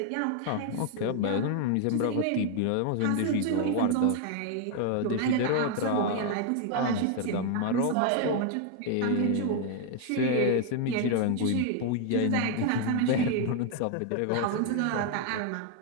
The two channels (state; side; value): different; both; correlation 0.00